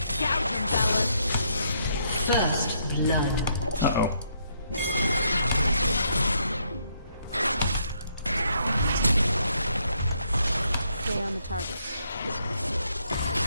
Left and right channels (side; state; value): both; inverted; correlation -0.73